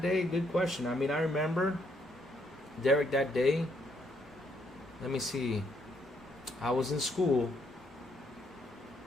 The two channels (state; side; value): normal; both; correlation 0.72